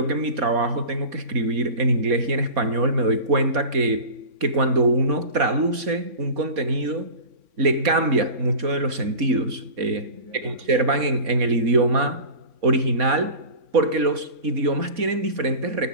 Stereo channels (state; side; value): late; left; 4.2 ms